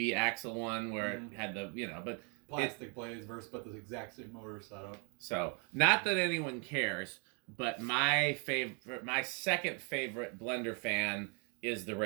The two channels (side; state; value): left; quieter; 36.5 dB